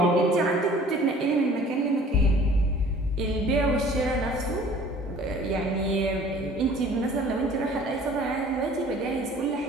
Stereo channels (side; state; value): both; normal; correlation 0.50